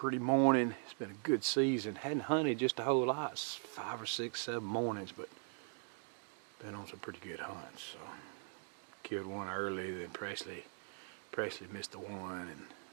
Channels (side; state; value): left; silent; 51 dB below the other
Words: morning. It's been a good season. Hadn't hunted just a whole lot. 5 or 6, 7 mornings, but been on some pretty good hunts. So killed one early, then Presley missed the one, and